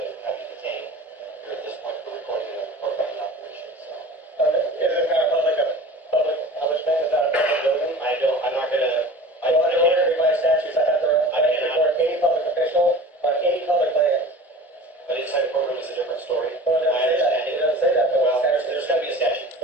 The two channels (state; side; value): normal; both; correlation 0.39